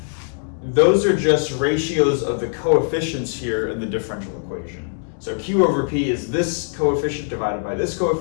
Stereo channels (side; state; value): right; silent; digital silence